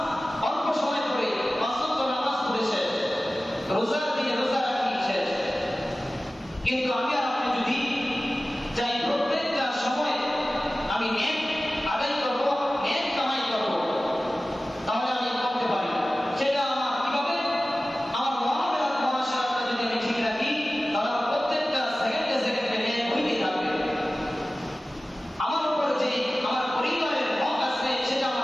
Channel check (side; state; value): both; normal; correlation 0.96